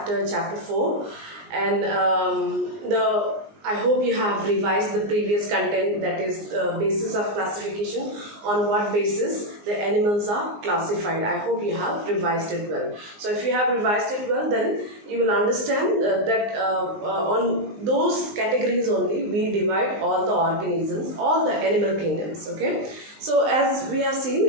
chapter 4. And I hope you have revised the previous content, that is basis of classification, on what basis the animals are classified. I hope you have revised it well. So if you have revised it well, then you will understand that on those categories only we divide all the organisms, all the animal kingdoms. Okay. So as we have seen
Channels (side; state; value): left; late; 19 ms